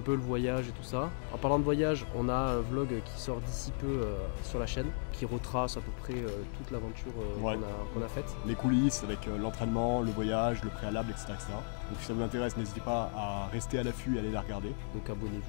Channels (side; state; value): right; silent; digital silence